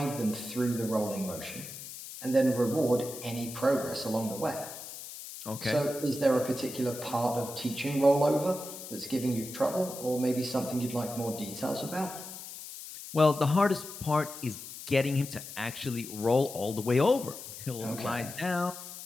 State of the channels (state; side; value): noise; left; hiss, 11 dB below the sound